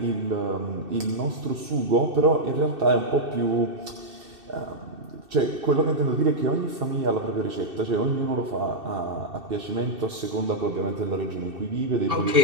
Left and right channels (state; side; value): late; left; 2.7 ms